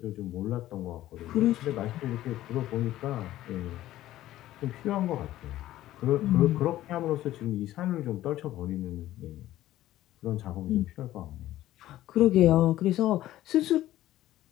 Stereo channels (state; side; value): quieter; right; 14.4 dB